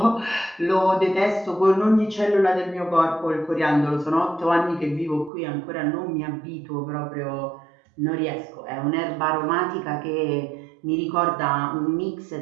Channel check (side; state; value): left; drops out; at 5.3 s